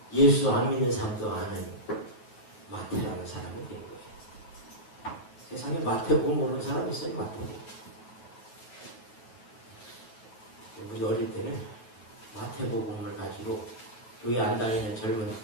예수 안 믿는 사람도 아는 마태라는 사람이 된 거예요. 세상에 마태복음 모르는 사람 있어요? 마태복음. 우리 어릴 때는 마태복음을 가지고 교회 안 다니는 젊은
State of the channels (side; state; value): right; late; 9.2 ms